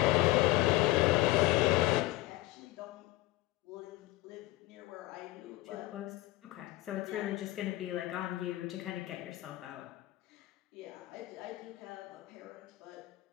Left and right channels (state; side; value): quieter; right; 18.6 dB